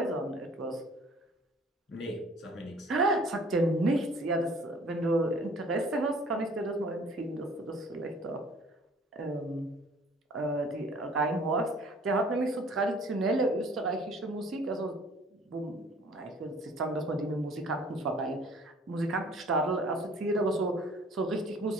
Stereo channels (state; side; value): normal; both; correlation 0.53